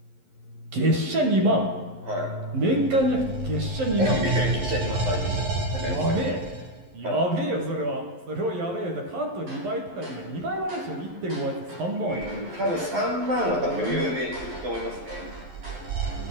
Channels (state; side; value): late; left; 11 ms